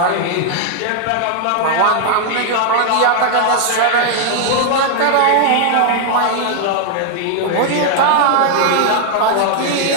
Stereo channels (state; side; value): different; both; correlation 0.00